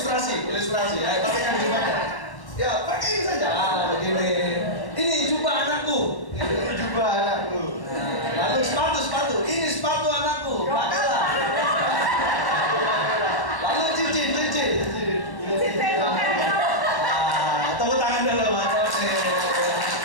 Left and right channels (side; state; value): right; late; 1.0 ms